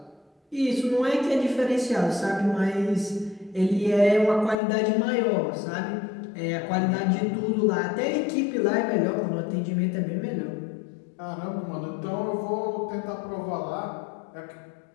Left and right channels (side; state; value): right; drops out; at 4.5 s